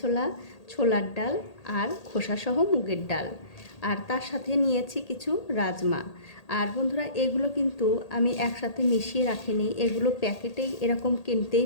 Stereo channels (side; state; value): right; late; 1.8 ms